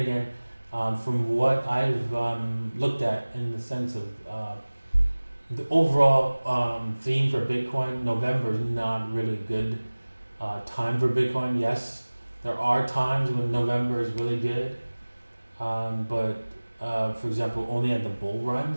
from what I've looked at in the sense of the overall theme for Bitcoin, November is not really a good time for Bitcoin. Yes, there are times when November is really good, but for example, only at the bull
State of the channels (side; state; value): both; inverted; correlation -1.00